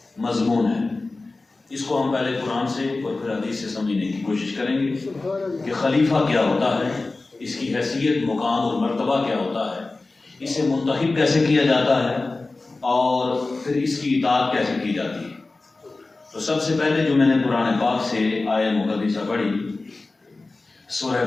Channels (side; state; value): right; quieter; 3.4 dB